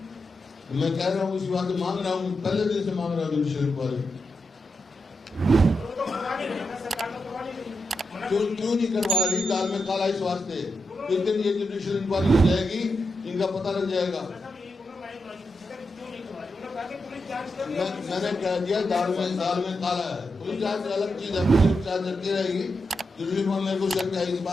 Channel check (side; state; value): both; normal; correlation 0.86